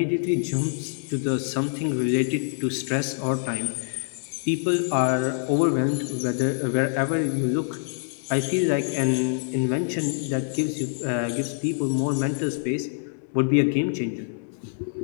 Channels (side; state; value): right; silent; digital silence